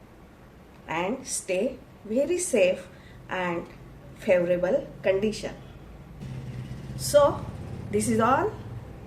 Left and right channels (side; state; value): both; identical; correlation 1.00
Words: and stay very safe and favorable condition. So this is all